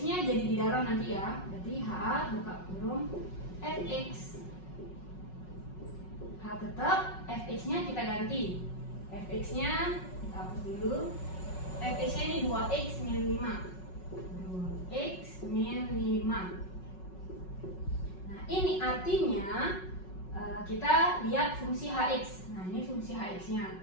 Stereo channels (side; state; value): right; late; 5.4 ms